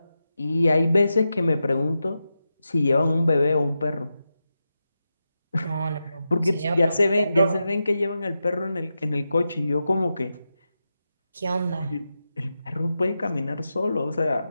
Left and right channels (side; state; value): both; inverted; correlation -0.90